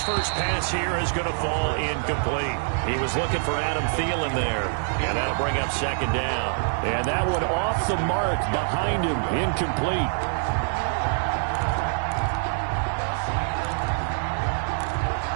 first pass here is going to fall incomplete. He was looking for Adam Thielen there. And that'll bring up second down. And that one off the mark behind him, incomplete.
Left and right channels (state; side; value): silent; left; digital silence